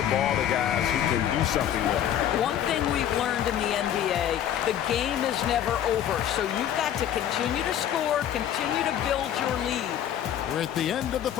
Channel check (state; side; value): quieter; right; 10.5 dB